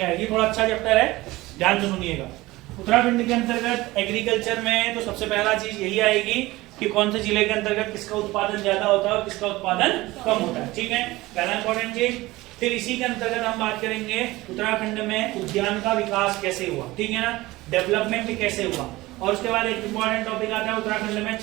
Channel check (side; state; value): left; quieter; 19.3 dB